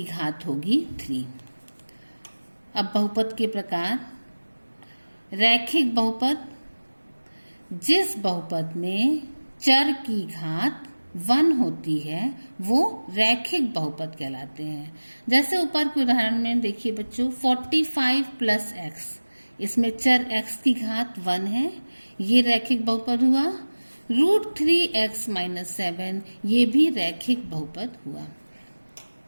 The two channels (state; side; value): inverted; both; correlation -1.00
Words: घात होगी 3। अब बहुपद के प्रकार। रैखिक बहुपद, जिस बहुपद में चर की घात 1 होती है, वो रैखिक बहुपद कहलाते हैं। जैसे ऊपर के उदाहरण में देखिए बच्चों 45 + x, इसमें चर x की घात 1 है, ये रैखिक बहुपद हुआ। √3x - 7, ये भी रैखिक बहुपद हुआ।